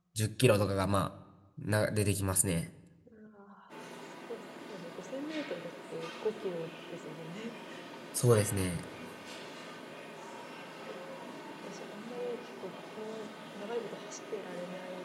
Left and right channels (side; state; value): both; identical; correlation 1.00